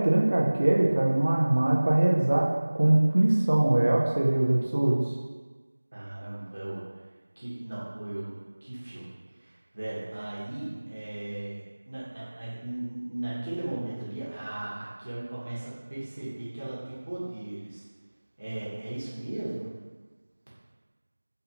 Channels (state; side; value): inverted; both; correlation -1.00